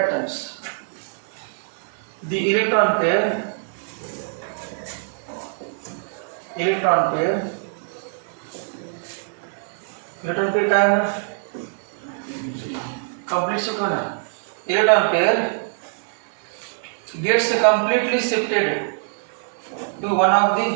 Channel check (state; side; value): silent; left; digital silence